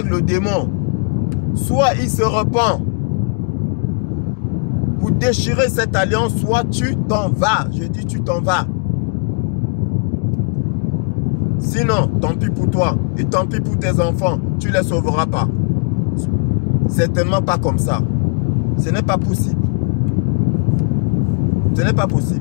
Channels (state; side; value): quieter; right; 36.4 dB